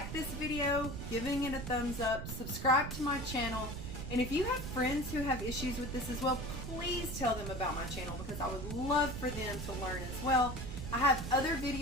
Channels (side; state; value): right; noise; rumble, 6 dB below the sound